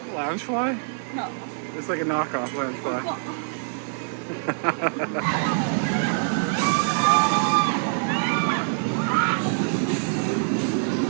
Loungefly? No. It's like a knockoff Loungefly. Well,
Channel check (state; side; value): silent; left; digital silence